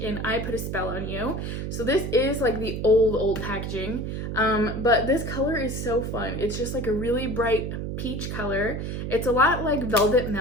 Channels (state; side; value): noise; right; hum, 4 dB below the sound